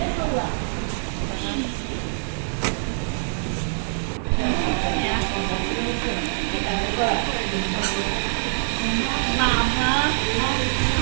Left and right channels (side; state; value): left; silent; digital silence